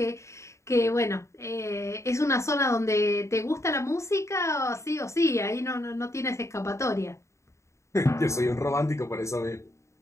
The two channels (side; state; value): right; late; 0.14 ms